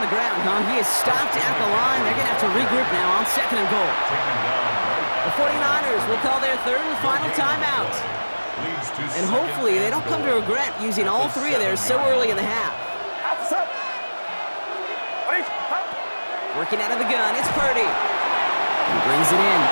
ground, huh? He is stopped at the line. They're going to have to regroup now on second and goal. The 49ers will call their third and final timeout. And hopefully they don't come to regret using all 3 of theirs so early in the half. Working out of the gun, it's Purdy. He brings it in.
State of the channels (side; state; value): both; inverted; correlation -1.00